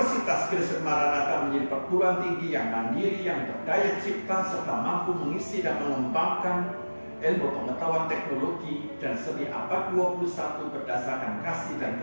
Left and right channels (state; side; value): inverted; both; correlation -1.00